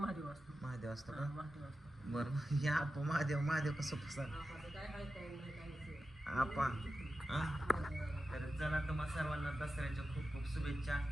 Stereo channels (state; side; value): normal; both; correlation 0.92